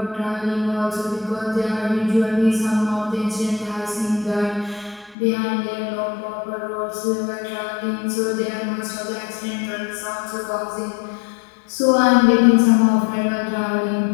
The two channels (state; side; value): drops out; right; at 5.2 s